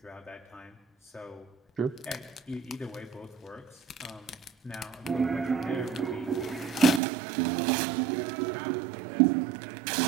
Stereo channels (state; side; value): drops out; left; at 7.0 s